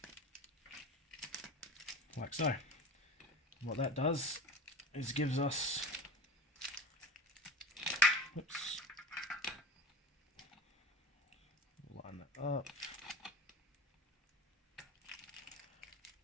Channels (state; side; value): normal; both; correlation 0.32